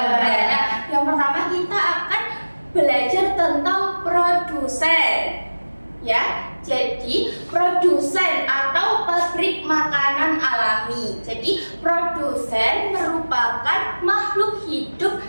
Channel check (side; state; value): both; inverted; correlation -1.00